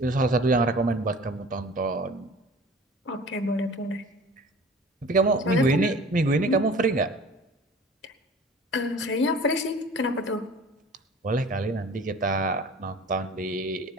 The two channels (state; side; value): normal; both; correlation 0.44